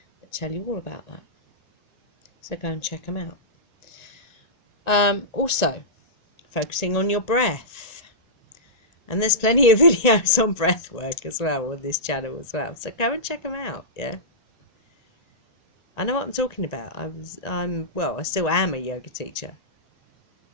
that tell you all about that. So go and check them out. Also, focusing on your breath. And there's plenty of videos on breath work as well on this channel as well. So go and check them out, yeah. I know what I'm talking about. I still am a yoga teacher.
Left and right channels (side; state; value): right; late; 1.8 ms